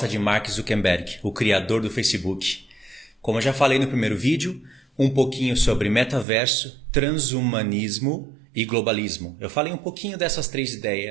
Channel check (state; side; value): drops out; left; at 6.2 s